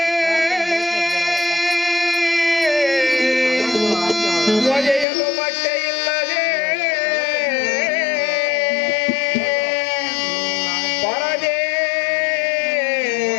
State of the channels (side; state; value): right; drops out; at 5.1 s